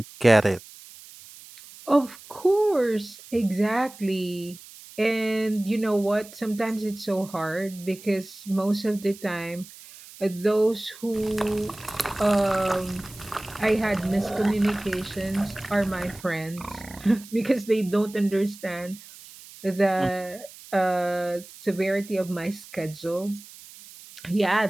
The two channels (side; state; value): right; noise; hiss, 19 dB below the sound